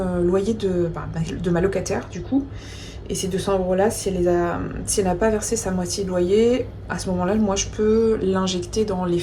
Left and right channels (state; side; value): identical; both; correlation 1.00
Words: loyer de ma locataire du coup. Et ces 200 € là, si elle n'a pas versé sa moitié de loyer, à ce moment là, moi je peux l'injecter dans les